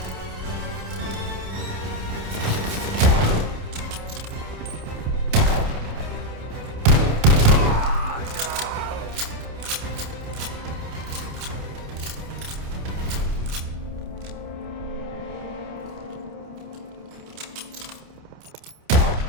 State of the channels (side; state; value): left; late; 28 ms